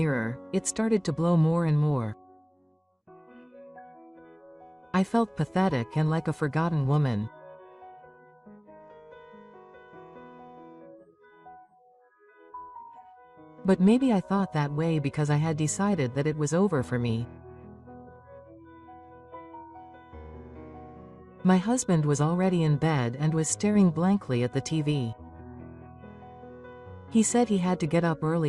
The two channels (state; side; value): identical; both; correlation 1.00